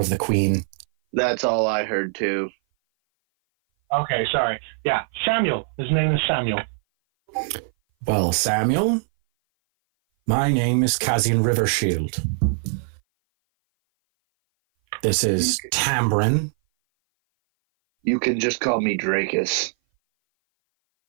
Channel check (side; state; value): left; silent; 58 dB below the other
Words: the queen. That's all I heard too. Okay, sorry. Yeah, Samuel. His name is Samuel. Well, Samuel, my name is Kazian Rivershield. This is Tambrin. You can just call me Dracus.